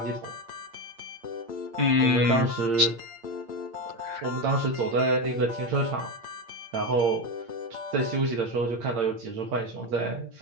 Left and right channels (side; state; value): left; late; 8.7 ms